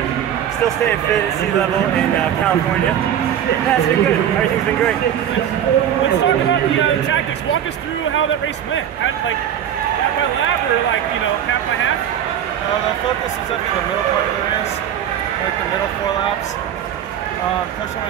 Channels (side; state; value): left; quieter; 9.9 dB